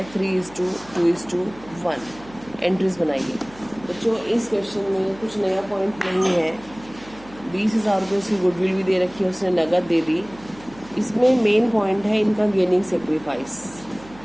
3:2:1। एंट्रीज बनाइए। बच्चों इस क्वेश्चन में कुछ नया पॉइंट नहीं है। 20,000 रुपये उसकी गुडविल भी दे रखी है, उसने नगद दे दी। इसमें मेन पॉइंट है इनका गेनिंग सेक्रीफाइस।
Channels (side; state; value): right; noise; hum, 21 dB below the sound